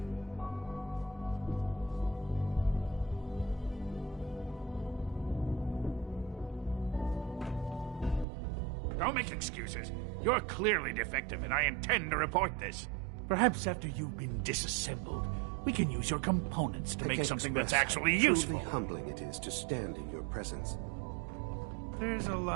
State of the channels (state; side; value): drops out; left; at 8.2 s